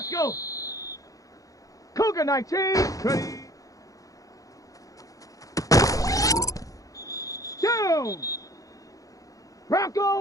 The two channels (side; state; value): right; late; 0.17 ms